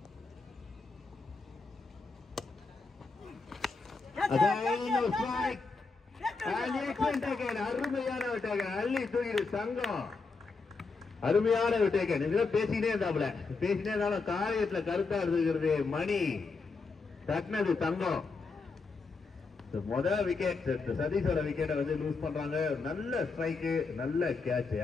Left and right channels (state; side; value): quieter; right; 4.2 dB